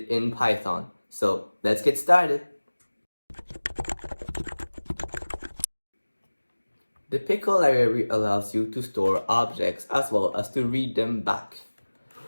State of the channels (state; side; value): inverted; both; correlation -1.00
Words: in Python. So let's get started. The Pickle library allows you to store objects as well as to read them back.